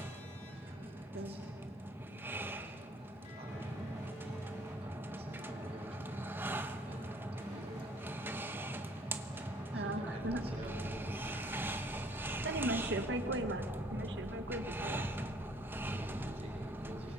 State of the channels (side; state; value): both; normal; correlation 0.58